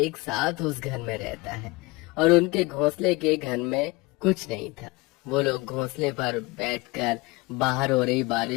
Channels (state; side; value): quieter; right; 23.8 dB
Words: साथ उस घर में रहता है, और उनके घोंसले के घर में कुछ नहीं था। वो लोग घोंसले पर बैठकर बाहर हो रही